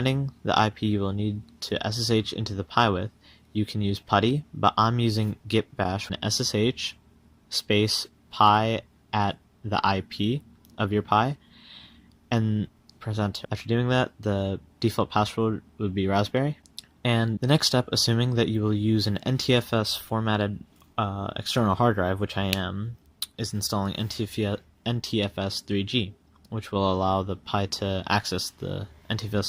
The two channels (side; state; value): both; identical; correlation 1.00